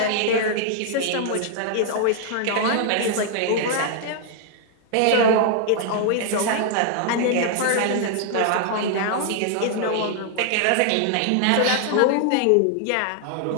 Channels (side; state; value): both; different; correlation 0.00